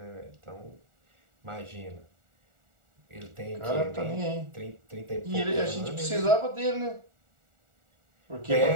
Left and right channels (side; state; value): left; late; 1.4 ms